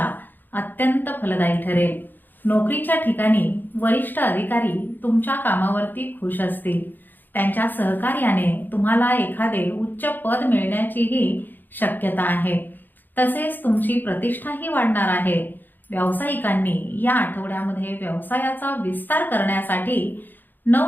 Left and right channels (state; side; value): late; right; 0.090 ms